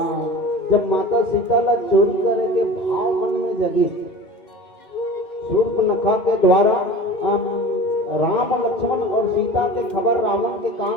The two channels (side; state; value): right; late; 2.4 ms